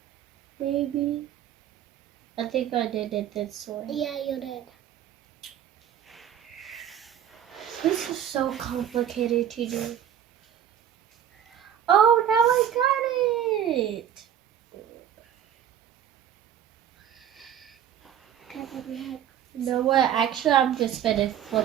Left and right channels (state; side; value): quieter; left; 9.8 dB